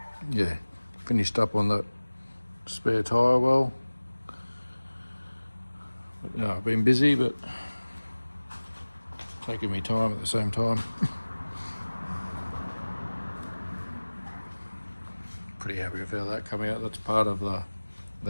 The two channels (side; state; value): both; inverted; correlation -1.00